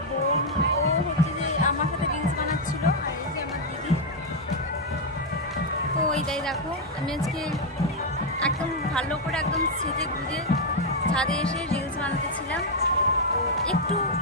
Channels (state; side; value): normal; both; correlation 0.00